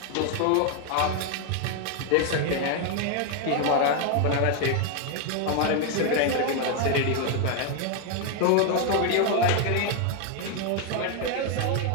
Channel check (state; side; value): different; both; correlation 0.01